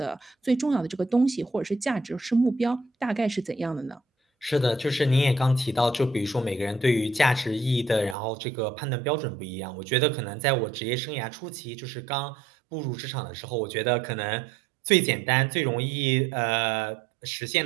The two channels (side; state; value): left; drops out; at 8.2 s